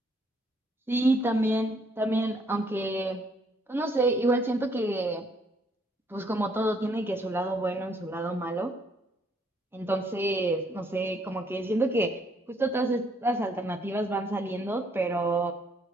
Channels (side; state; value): both; normal; correlation 0.68